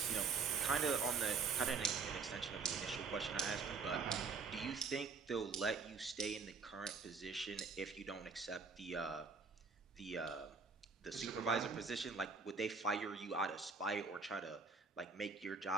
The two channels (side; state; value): left; quieter; 4.8 dB